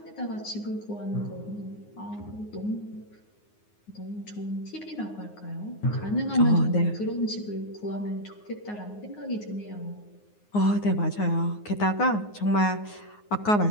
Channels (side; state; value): right; late; 9.6 ms